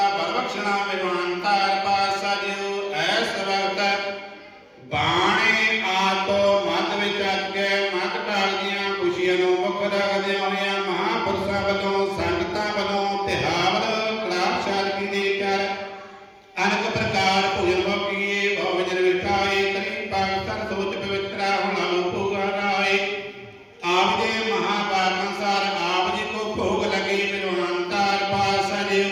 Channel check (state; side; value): identical; both; correlation 1.00